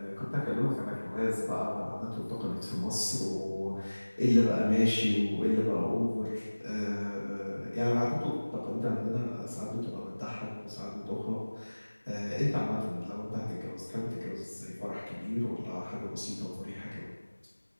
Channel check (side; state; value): both; inverted; correlation -1.00